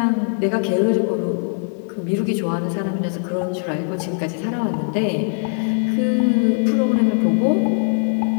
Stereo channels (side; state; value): right; silent; 65 dB below the other